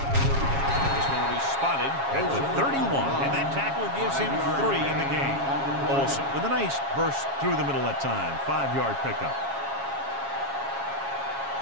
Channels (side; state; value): left; late; 7.3 ms